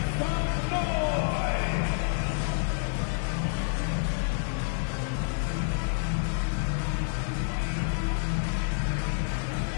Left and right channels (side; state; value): right; silent; digital silence